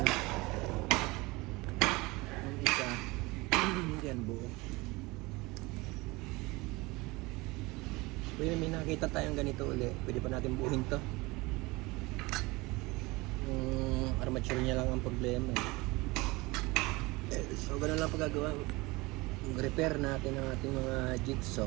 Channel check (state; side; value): quieter; left; 23.0 dB